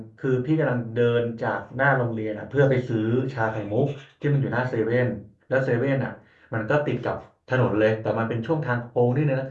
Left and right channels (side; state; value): both; identical; correlation 1.00